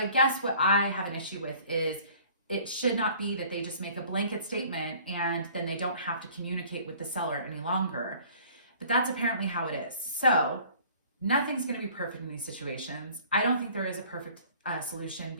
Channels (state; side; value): inverted; both; correlation -0.52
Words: guess what I have an issue with is it should not be that they just make a blanket statement and then they don't have to communicate with the seller any longer. But that's apparently how it is. So nothing's going to be perfect in these situations. I don't think there is a perfect solution,